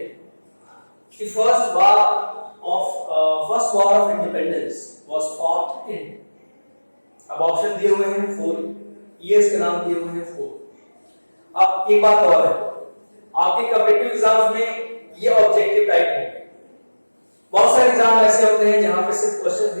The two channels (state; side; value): inverted; both; correlation -1.00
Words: कि first war of independence was fought in. अब ऑप्शन दिए हुए हैं 4, ईयर्स के नाम दिए हुए हैं 4। अब एक बात और है, आपके कॉम्पिटिटिव एग्जाम्स में ये ऑब्जेक्टिव टाइप होंगे। बहुत सारे एग्जाम ऐसे होते हैं जहां पे सिर्फ क्वेश्चन